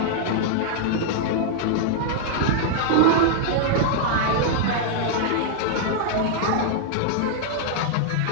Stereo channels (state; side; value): different; both; correlation -0.01